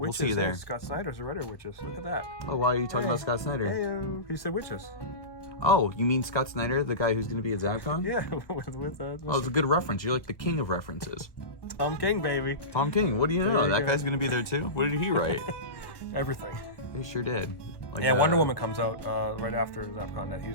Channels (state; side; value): late; right; 1.1 ms